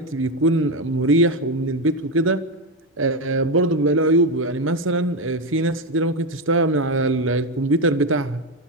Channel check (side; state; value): both; normal; correlation 0.11